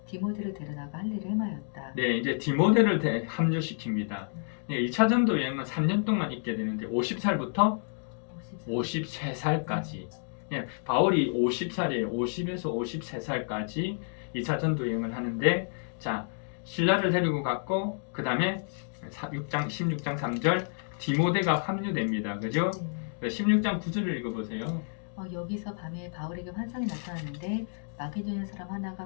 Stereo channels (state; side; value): silent; right; digital silence